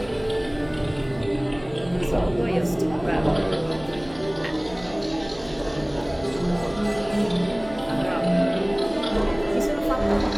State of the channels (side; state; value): right; noise; hum, 20 dB below the sound